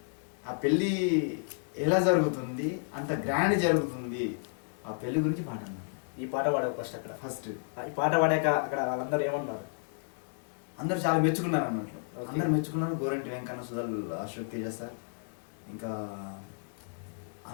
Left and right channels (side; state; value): right; silent; digital silence